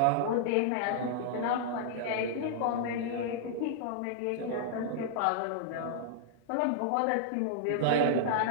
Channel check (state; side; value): different; both; correlation -0.01